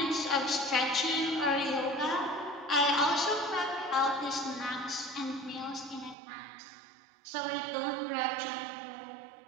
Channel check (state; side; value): drops out; left; at 6.2 s